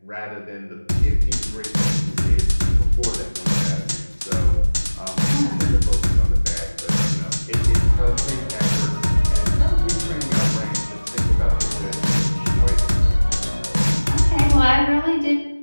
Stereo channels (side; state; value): both; inverted; correlation -1.00